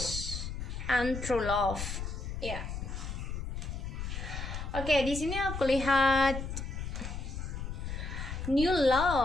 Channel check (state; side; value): noise; left; rumble, 5 dB below the sound